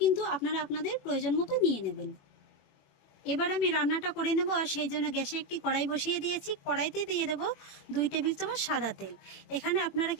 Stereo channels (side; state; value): right; late; 21 ms